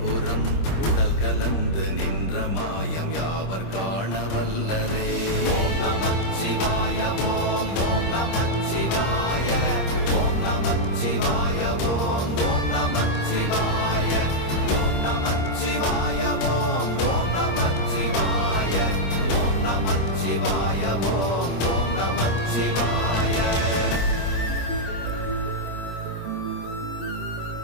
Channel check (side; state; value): right; late; 26 ms